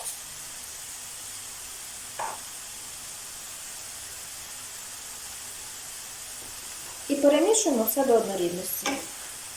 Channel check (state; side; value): identical; both; correlation 1.00